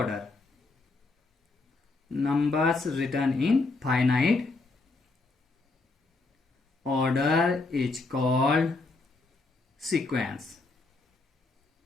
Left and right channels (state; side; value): quieter; right; 3.6 dB